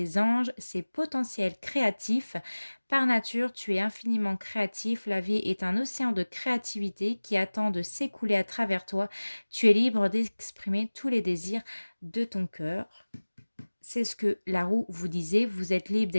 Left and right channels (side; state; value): both; inverted; correlation -1.00